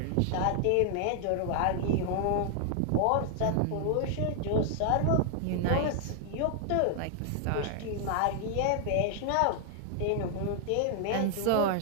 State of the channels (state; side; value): different; both; correlation 0.00